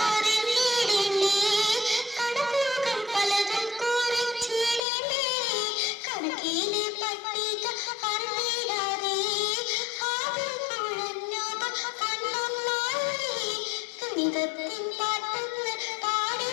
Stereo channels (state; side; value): drops out; right; at 4.9 s